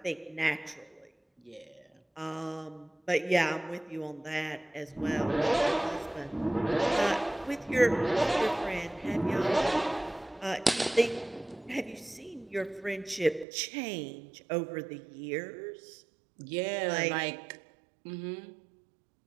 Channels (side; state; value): left; drops out; at 13.5 s